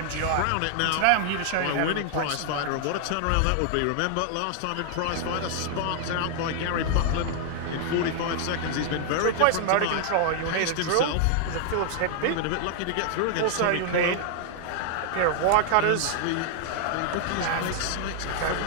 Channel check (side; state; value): both; different; correlation 0.00